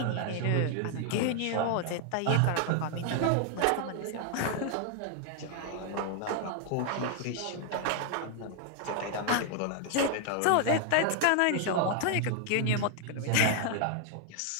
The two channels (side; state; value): both; different; correlation 0.00